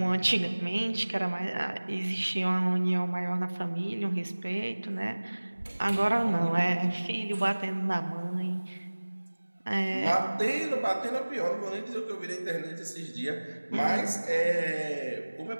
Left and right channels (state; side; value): inverted; both; correlation -1.00